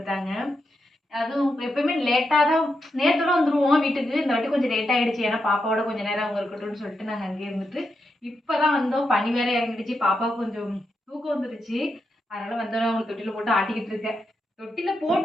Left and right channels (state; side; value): normal; both; correlation 0.85